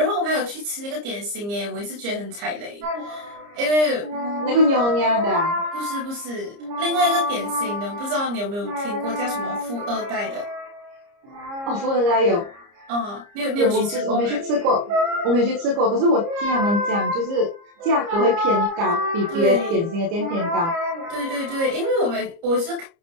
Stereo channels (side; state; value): left; late; 30 ms